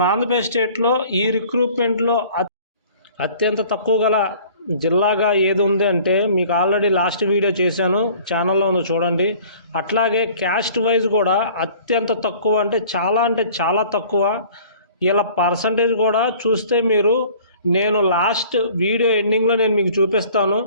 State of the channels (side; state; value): both; inverted; correlation -0.50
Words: ఆంధ్రప్రదేశ్ స్టేట్లో ఈ రిక్రూట్మెంట్లో అత్యంత తక్కువ గల జిల్లాగా ఏది ఉంది అంటే మీకు ఆల్రెడీ లాస్ట్ వీడియో చేశాను, ఛానల్లో ఉందో చూడండి. అట్లాగే క్యాస్ట్ వైజ్ కూడా అత్యంత తక్కువ అంటే చాలా తక్కువ. ఇలా పర్సంటేజ్ కూడా చూస్తే మీరు నేను లాస్ట్ వీడియో ఎండింగ్లో నేను మీకు చూపిస్తాను,